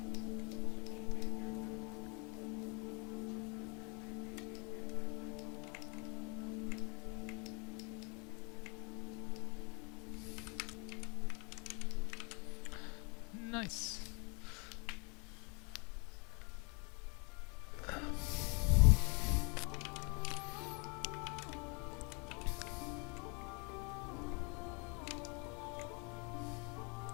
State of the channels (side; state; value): right; quieter; 32.8 dB